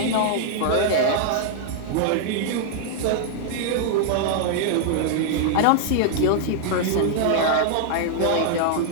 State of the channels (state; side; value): different; both; correlation -0.01